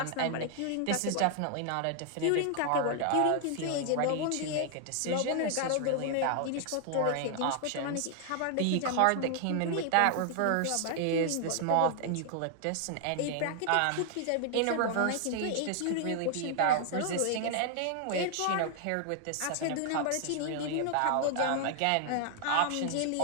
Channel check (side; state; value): both; different; correlation 0.00